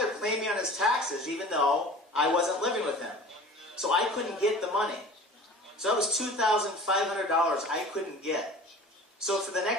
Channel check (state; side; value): normal; both; correlation 0.42